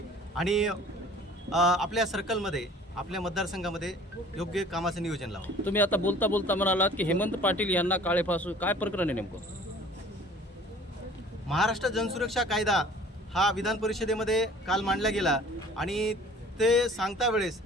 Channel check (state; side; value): normal; both; correlation 0.49